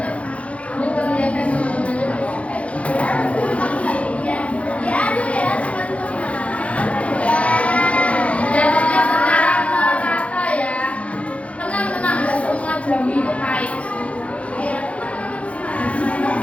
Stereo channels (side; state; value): right; late; 0.063 ms